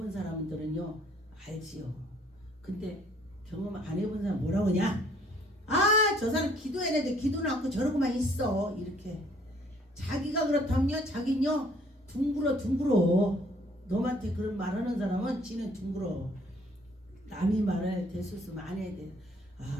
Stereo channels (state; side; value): normal; both; correlation 0.61